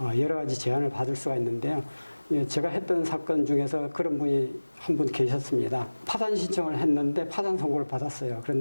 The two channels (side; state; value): both; inverted; correlation -1.00